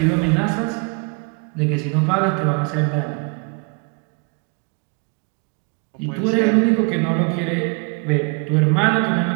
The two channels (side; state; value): left; quieter; 34.7 dB